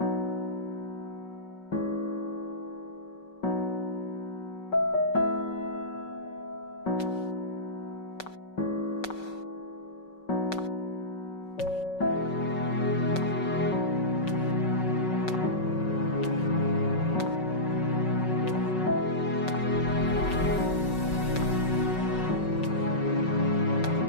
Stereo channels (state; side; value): late; right; 5.3 ms